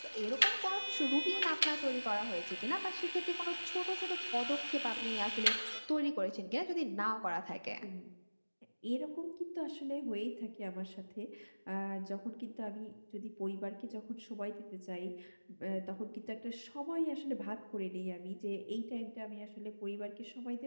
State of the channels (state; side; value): inverted; both; correlation -1.00